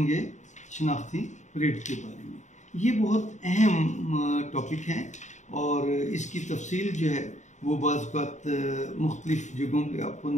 शनाख्ती परेड के बारे में। ये बहुत अहम टॉपिक है और इसकी तफसील जो है वो बाज़ बात मुख्तलिफ़ जगहों पे आपको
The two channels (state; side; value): late; right; 0.34 ms